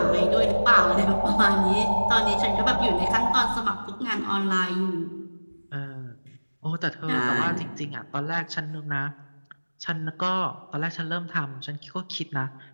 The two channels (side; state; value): both; inverted; correlation -1.00